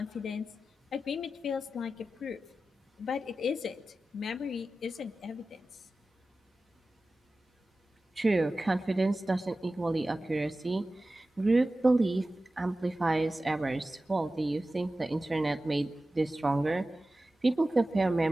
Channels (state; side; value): normal; both; correlation 0.95